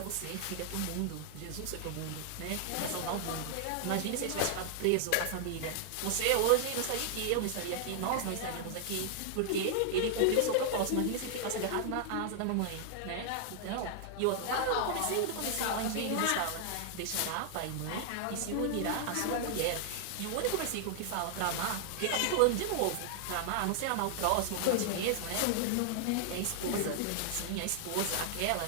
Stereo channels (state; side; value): different; both; correlation 0.00